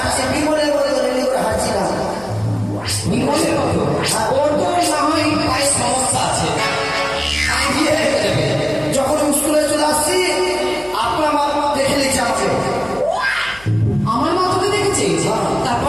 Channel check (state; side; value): noise; left; hum, 23 dB below the sound